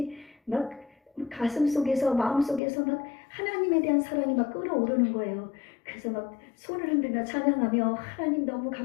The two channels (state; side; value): drops out; right; at 2.6 s